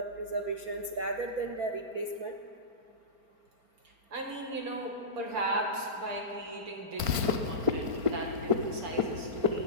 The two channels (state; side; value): late; left; 4.4 ms